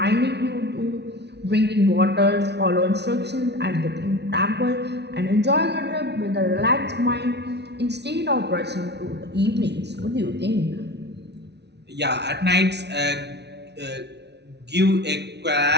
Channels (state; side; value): late; left; 0.50 ms